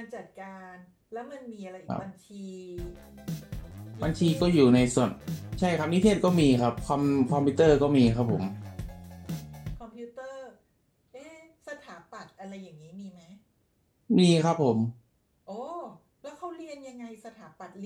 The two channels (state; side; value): identical; both; correlation 1.00